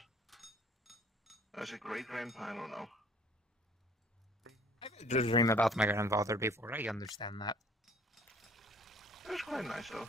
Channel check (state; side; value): normal; both; correlation 0.54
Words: I was a great-grandpa, I don't know. I've had a dream about my grandfather before, I understand that. It was quite nice, though.